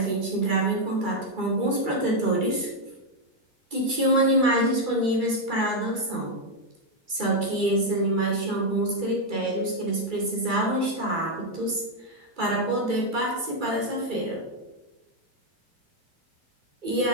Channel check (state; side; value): late; left; 2.3 ms